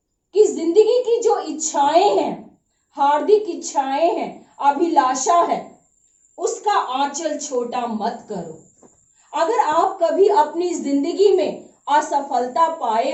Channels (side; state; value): both; identical; correlation 1.00